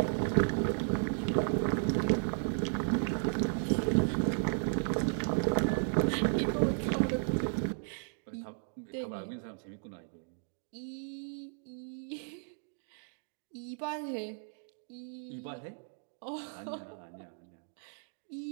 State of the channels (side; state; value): left; silent; digital silence